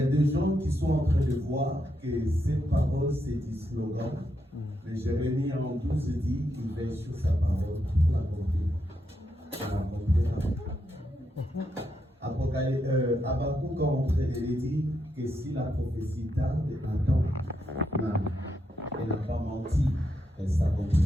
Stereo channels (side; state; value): both; normal; correlation 0.82